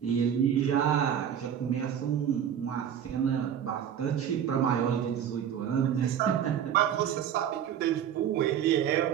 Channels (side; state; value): left; quieter; 9.2 dB